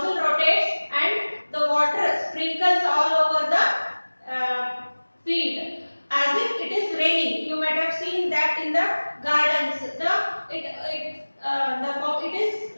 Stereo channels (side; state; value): both; inverted; correlation -1.00